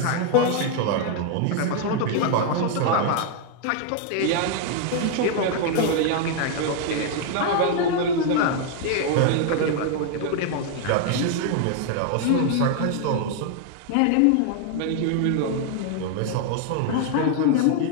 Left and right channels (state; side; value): different; both; correlation 0.00